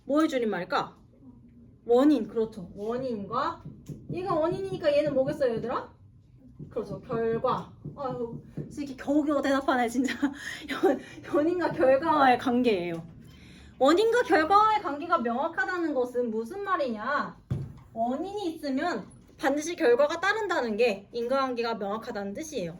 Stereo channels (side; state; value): both; identical; correlation 1.00